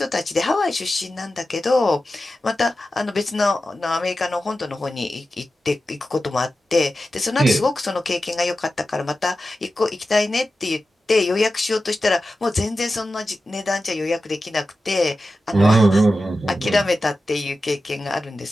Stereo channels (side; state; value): both; normal; correlation 0.93